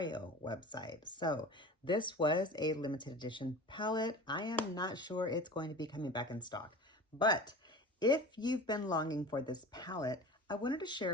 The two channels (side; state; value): both; normal; correlation 0.36